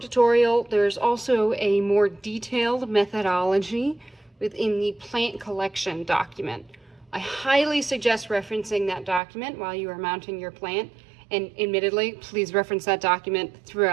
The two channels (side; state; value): left; drops out; at 9.2 s